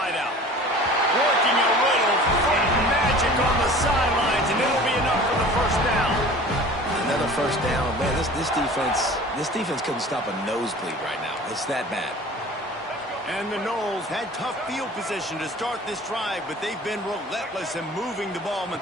Working a little magic on the sidelines, and it'll be enough for the 1st down. Another 1st down. Man, this defense couldn't stop a nosebleed right now. It's that bad. And the Noles had tough field position to start this drive, but they've been relentless in moving the ball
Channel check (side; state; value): both; normal; correlation 0.43